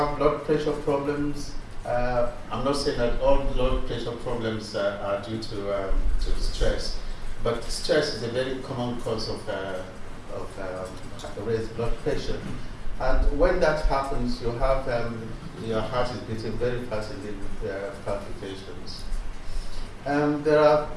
blood pressure problems. I'm not saying that all blood pressure problems are due to stress, But stress is a very common cause of raised blood pressure. And when that happens, you have your heart is beating very fast in the palpitations. There are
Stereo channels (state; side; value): identical; both; correlation 1.00